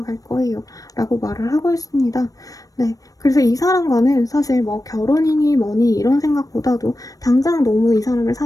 거예요. 라고 말을 하고 있습니다. 네, 그래서 이 사람과는 사실 뭐 결혼이니 뭐니 이런 생각보다도 당장 너무 이 사람을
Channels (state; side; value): late; right; 0.17 ms